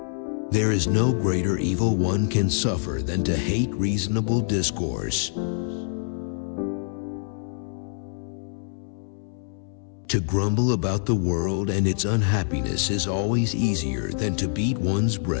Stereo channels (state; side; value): silent; right; 61 dB below the other